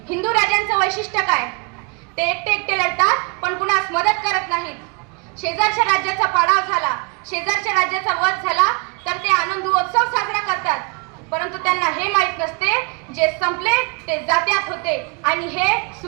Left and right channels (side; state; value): left; quieter; 33.4 dB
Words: हिंदू राजांचं वैशिष्ट्य काय? ते एकटे लढतात पण कुणास मदत करत नाहीत. शेजारच्या राज्याचा पाडाव झाला, शेजारच्या राज्याचा वध झाला तर ते आनंद उत्सव साजरा करतात. परंतु त्यांना हे माहीत नसते, जे संपले ते जात्यात होते आणि हे